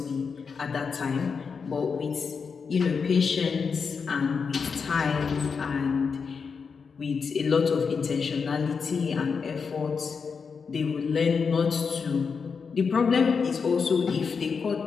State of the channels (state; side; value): quieter; right; 5.6 dB